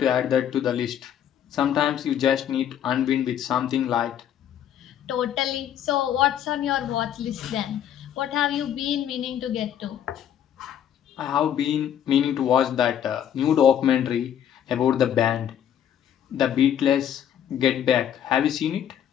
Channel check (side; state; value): right; quieter; 9.9 dB